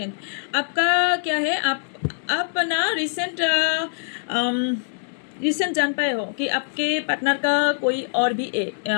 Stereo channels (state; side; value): silent; right; 63 dB below the other